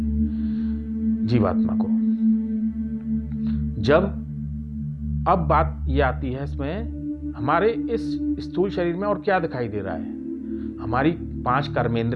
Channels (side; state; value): both; identical; correlation 1.00